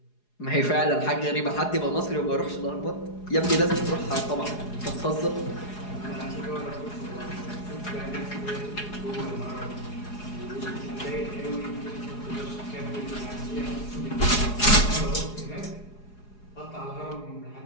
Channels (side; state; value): right; late; 4.8 ms